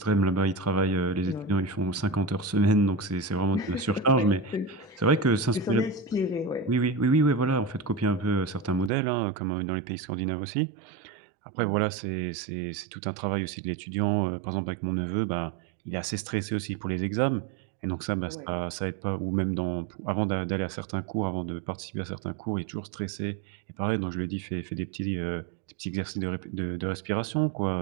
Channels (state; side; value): drops out; left; at 8.9 s